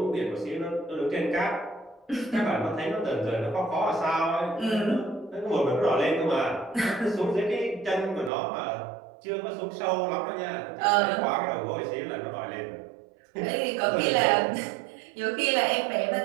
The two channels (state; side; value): drops out; left; at 8.3 s